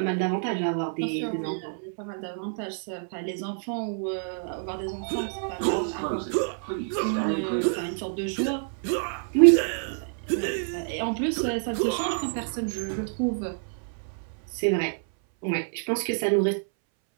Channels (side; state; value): left; silent; 60 dB below the other